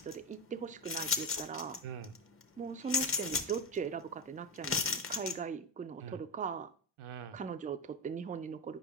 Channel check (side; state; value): both; normal; correlation 0.15